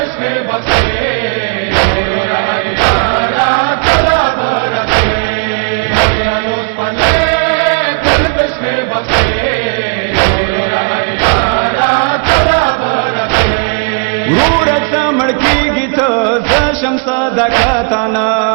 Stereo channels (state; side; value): quieter; left; 39.1 dB